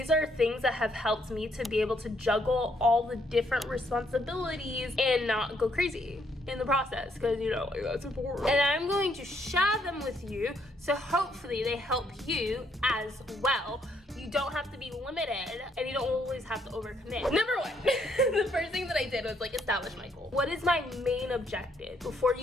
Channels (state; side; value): normal; both; correlation 0.71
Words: are things that have helped me to be able to juggle all the different responsibilities and not go crazy in the process, because you know, like, that's important. And I'm going to share them with you, so hopefully they help you as well. You don't have to be limited, and you don't always have to overcommit. Number one, the first thing that I did was like establish my goal. What is my main objective? Before